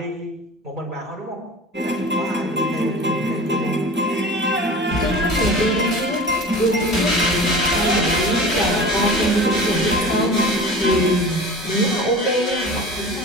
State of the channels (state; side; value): normal; both; correlation 0.36